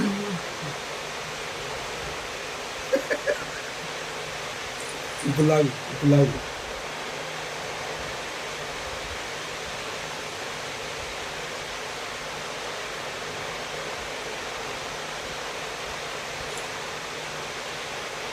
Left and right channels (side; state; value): both; identical; correlation 1.00